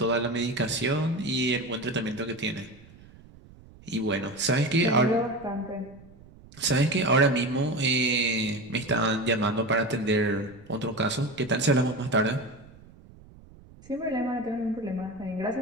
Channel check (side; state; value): right; noise; rumble, 23 dB below the sound